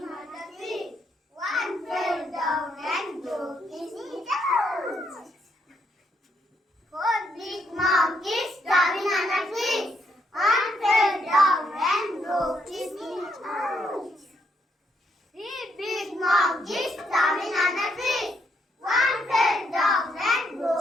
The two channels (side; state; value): both; normal; correlation 0.75